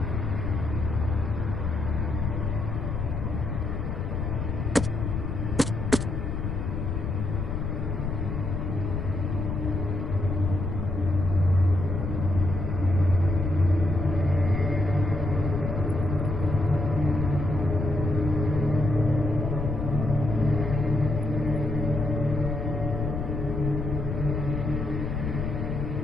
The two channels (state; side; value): noise; left; rumble, 2 dB below the sound